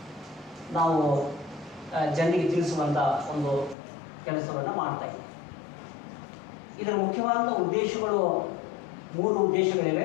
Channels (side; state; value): right; drops out; at 3.8 s